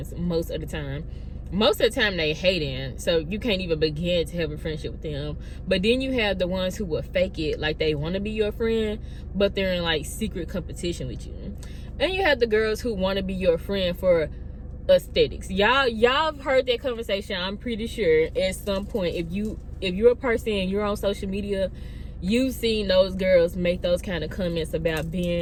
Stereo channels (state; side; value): identical; both; correlation 1.00